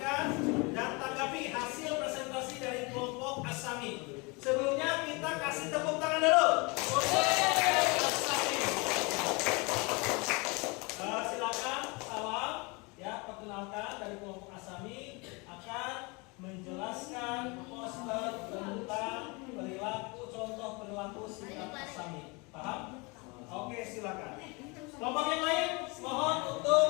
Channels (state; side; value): quieter; right; 28.3 dB